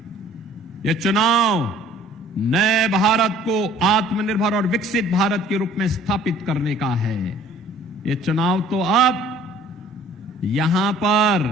यह चुनाव नए भारत को आत्मनिर्भर और विकसित भारत के रूप में स्थापित करने का है। यह चुनाव तो अब यहां पर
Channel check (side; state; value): both; normal; correlation 0.53